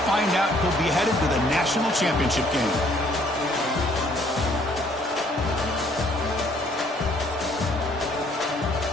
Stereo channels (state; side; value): normal; both; correlation 0.63